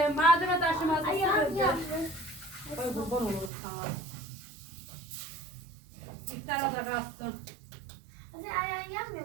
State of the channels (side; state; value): left; drops out; at 3.5 s